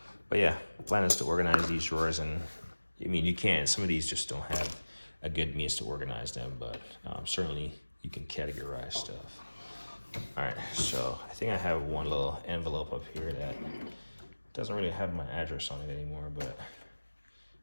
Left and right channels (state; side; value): inverted; both; correlation -1.00